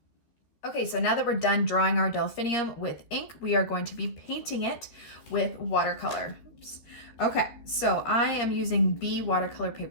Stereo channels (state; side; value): late; right; 13 ms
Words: Okay, so now that we're done drawing our delphinium with ink, we are going to be painting it with watercolor. Oops. Okay, so I am using B watercolor